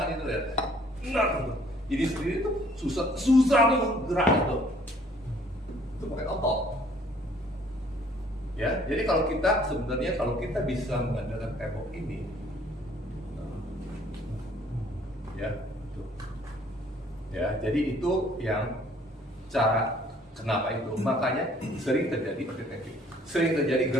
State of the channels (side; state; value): both; normal; correlation 0.59